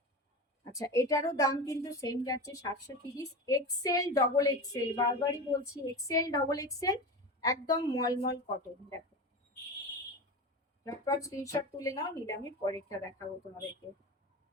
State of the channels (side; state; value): both; normal; correlation 0.26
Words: আচ্ছা, এটারও দাম কিন্তু সেম যাচ্ছে 730। এক্সেল ডবল এক্সেল, বারবারই বলছি এক্সেল ডবল এক্সেল, একদম মলমল কটন। দেখো ঝটপট স্ক্রিনশট তুলে নাও, নিলে আমি পরেরটা দেখাবো তোমাদেরকে।